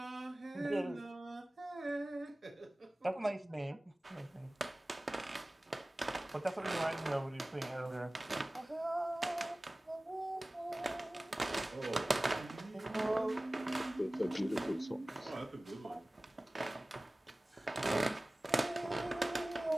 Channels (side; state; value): both; normal; correlation 0.98